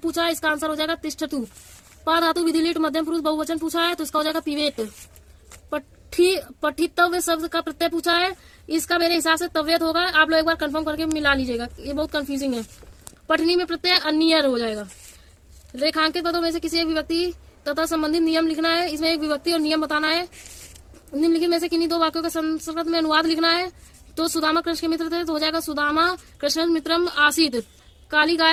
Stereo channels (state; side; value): identical; both; correlation 1.00